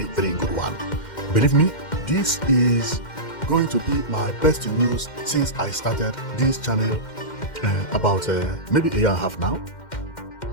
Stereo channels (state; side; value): late; right; 2.1 ms